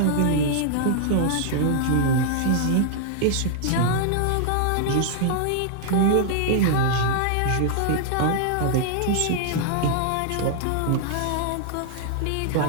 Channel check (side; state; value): both; different; correlation -0.01